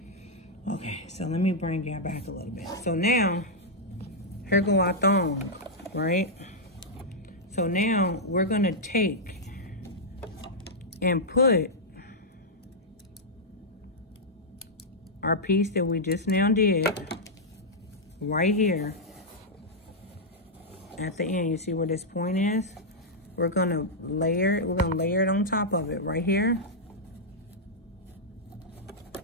Okay, so let me bring you back a little bit. So now, here go our thong, right? So now we're gonna take and put our piece that we just now did right here at the end. You see where this point is? We're gonna layer it on top of it right here.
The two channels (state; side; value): normal; both; correlation -0.06